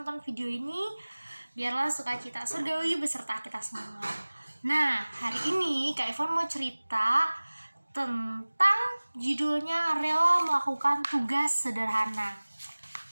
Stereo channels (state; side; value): inverted; both; correlation -1.00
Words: video ini, biarlah sukacita surgawi beserta kita semua. Nah, hari ini Kak Ivon mau cerita tentang judulnya Rela Melakukan Tugas Sederhana.